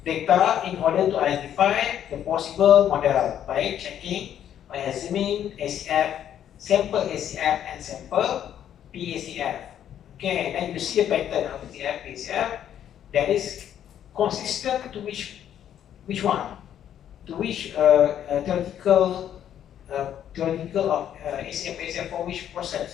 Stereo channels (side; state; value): right; quieter; 10.1 dB